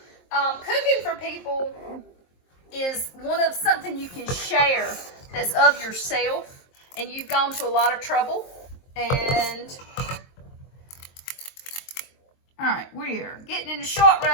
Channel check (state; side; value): late; right; 23 ms